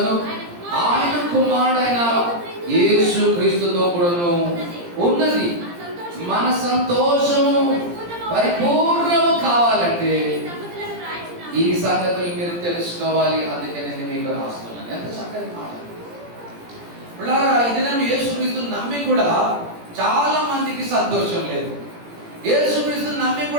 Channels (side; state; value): left; late; 17 ms